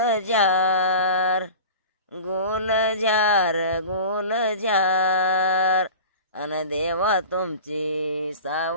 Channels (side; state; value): both; inverted; correlation -0.37